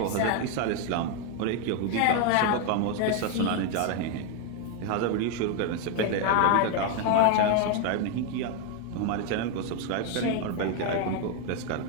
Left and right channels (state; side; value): different; both; correlation 0.01